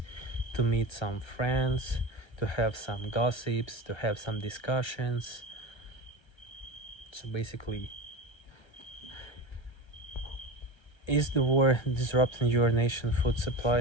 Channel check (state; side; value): late; right; 1.3 ms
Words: to meet some friends, to have some gossips, to have some discussions. So basically, is the war disrupting your nation food